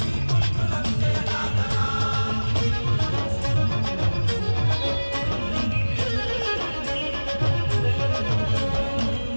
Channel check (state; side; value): inverted; both; correlation -1.00